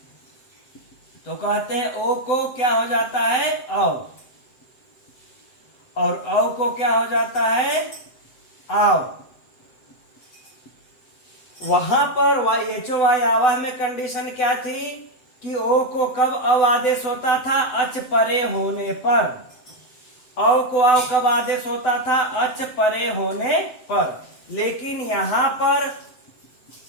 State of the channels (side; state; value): right; late; 7.9 ms